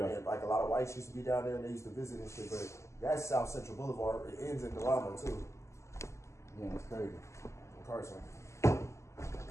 And like a lot of whites used to be down there and they used to visit and shit. But that's South Central Boulevard. It ends in Delano too. Yeah, it's crazy. Carson.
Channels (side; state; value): right; late; 0.14 ms